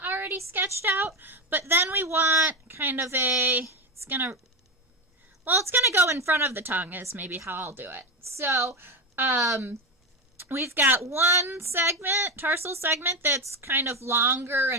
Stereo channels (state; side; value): normal; both; correlation 0.15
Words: already sketched out, but then we want kind of it's gonna go in front of the tongue is maybe how I'll do it. So, we've got one segment, tarsal segment, that's kind of longer